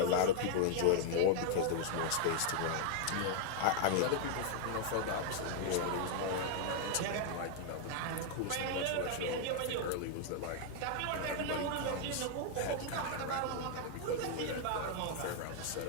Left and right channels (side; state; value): both; different; correlation 0.00